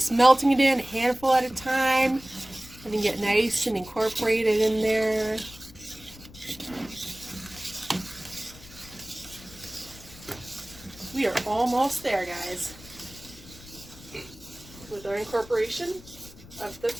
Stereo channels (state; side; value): noise; left; rumble, 19 dB below the sound